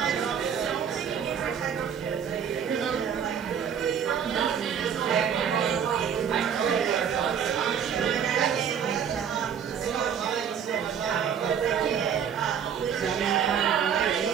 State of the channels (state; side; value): quieter; left; 7.9 dB